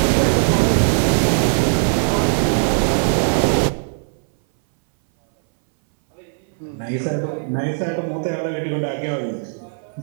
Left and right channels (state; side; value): silent; left; 62 dB below the other